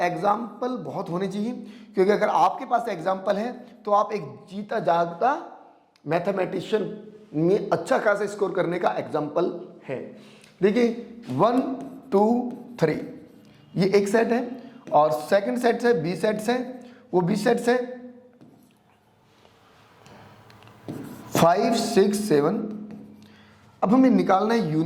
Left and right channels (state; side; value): identical; both; correlation 1.00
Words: एग्जाम्पल बहुत होने चाहिए, क्योंकि अगर आपके पास एग्जाम्पल है तो आप एक जीता जागता मैथमेटिशियन में अच्छा खासा स्कोर करने का एग्जाम्पल है. देखिए 1 2 3 ये एक सेट है, और सेकंड सेट है बी सेट्स है, वो बी सेट्स है 5 6 7. अब हमें निकालना है